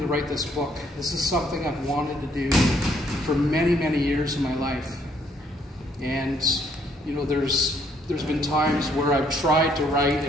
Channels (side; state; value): both; normal; correlation 0.67